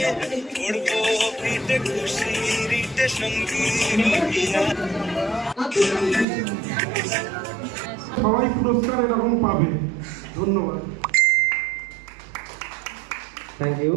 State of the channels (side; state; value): left; drops out; at 6.2 s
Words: উড়বো পিঠে খুশি রিটে সঙ্গী রহিয়া। সবাই পুরস্কার এরকম পাবে। ধন্যবাদ। Thank you.